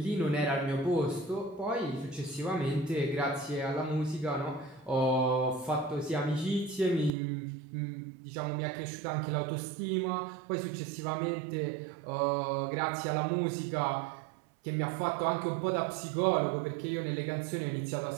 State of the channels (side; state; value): left; drops out; at 7.1 s